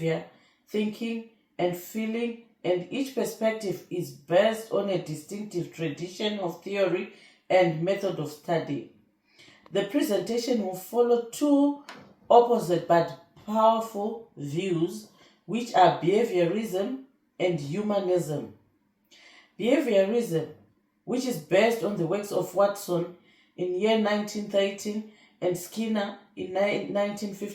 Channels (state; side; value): identical; both; correlation 1.00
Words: thinking, and feeling, and each perspective is based on a distinctive tradition of theory and method of study. The presentation will follow two opposite but powerful views, which are behaviorism and humanism. Behaviorism, which is based on the works of Watson in year 1913 and Skinner in